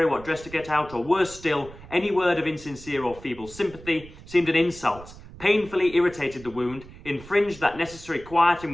what dress to get out, or worse still, any word of insincere or feeble sympathy, seemed an insult, painfully irritated the wound, infringed that necessary quiet in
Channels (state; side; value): noise; right; rumble, 18 dB below the sound